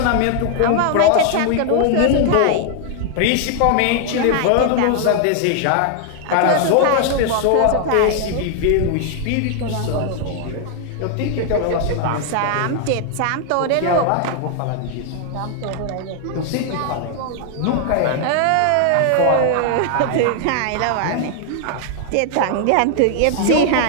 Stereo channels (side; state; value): both; different; correlation 0.00